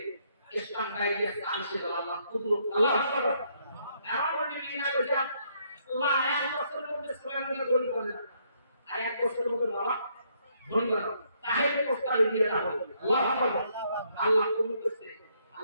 ইসলাম গাইডিয়া চালছে আল্লাহ কুদরত আল্লাহ আকবার এমন বলি না কইছে আল্লাহ এক বছরের মধ্যে সুলাইমানকে ধনী করে না আর এক বছরের মধ্যে বাবা ধনী করে তাহলে প্রস্তাব দিয়ে দাও আল্লাহ আকবার আল্লাহ কবুল করছে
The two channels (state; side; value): inverted; both; correlation -0.72